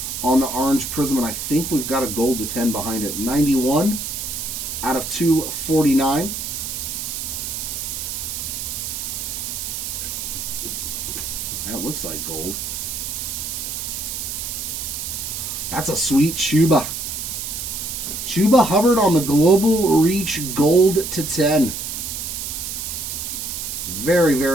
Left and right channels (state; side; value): noise; right; hiss, 5 dB below the sound